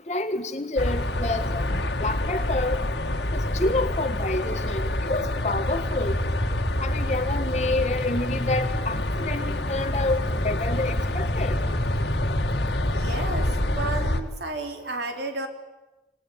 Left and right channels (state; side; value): normal; both; correlation 0.57